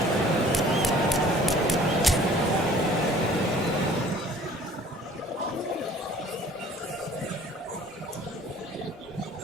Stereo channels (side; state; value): both; normal; correlation 0.52